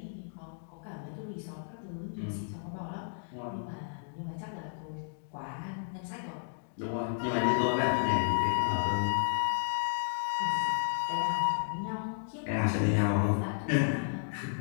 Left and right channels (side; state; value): right; silent; digital silence